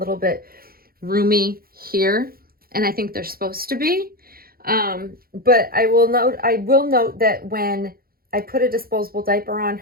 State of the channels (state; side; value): late; left; 0.43 ms